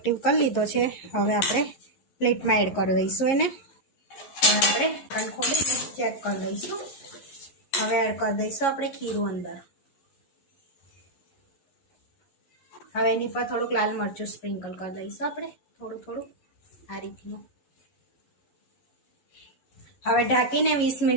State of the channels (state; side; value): late; right; 11 ms